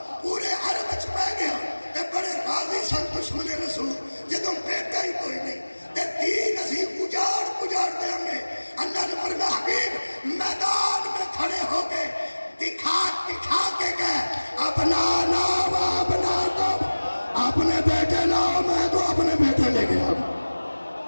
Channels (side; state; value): both; inverted; correlation -1.00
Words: پورے عرب وچ پہ گیا تے بڑے راضی سن دشمن رسول. جدو بیٹا ہی کوئی نہیں تے دین اسی اجاڑ دیں گے. اللہ نے فرمایا حبیب میدان میں کھڑے ہو کے دکھا کے گئے اپنا نام اپنا کو اپنے بیٹے لاؤ, میں تو اپنے بیٹے لے گیا.